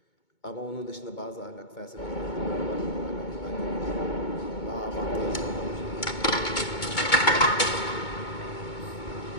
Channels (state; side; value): late; right; 2.2 ms